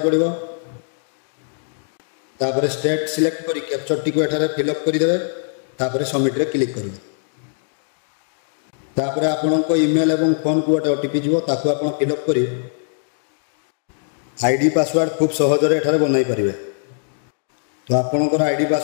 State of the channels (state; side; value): silent; right; digital silence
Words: पड़िबो, तापर स्टेट सिलेक्ट करी कैप्चर टी को एठारे फिलअप करि देबे, तापर सबमिट रे क्लिक करिवे। तापर आपणको ईमेल एवं फोन को गोटे OTP जीवो ताकू आपण फिलअप करी आईडी पासवर्ड खूब सहज रे एठारे बनाई परिवे। तो आपणकर आईडी